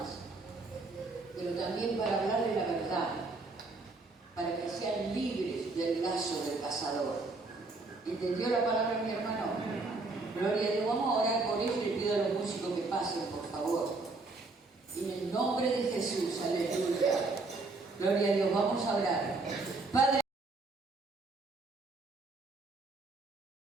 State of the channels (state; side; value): quieter; left; 3.5 dB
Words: pero también para hablarle la verdad, para que sean libres del lazo del cazador. ¿Entendió la palabra, mi hermano? Gloria a Dios. Vamos a orar por ellos y le pido a los músicos que pasen, por favor. En el nombre de Jesús, aleluya. Gloria a Dios. Vamos a orar. Padre,